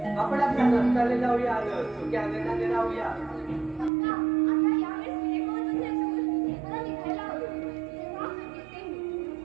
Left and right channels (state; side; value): drops out; left; at 3.9 s